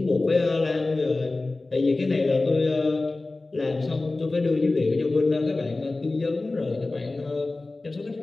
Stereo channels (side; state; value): right; quieter; 3.2 dB